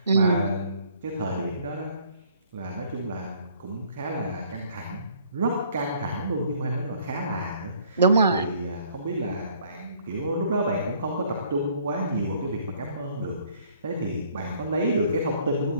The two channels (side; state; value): both; inverted; correlation -0.61